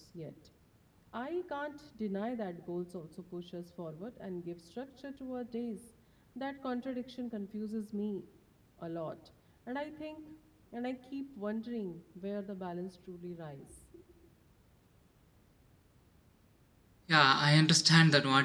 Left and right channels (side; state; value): both; identical; correlation 1.00